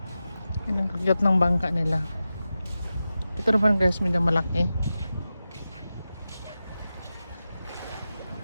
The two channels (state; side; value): inverted; both; correlation -0.92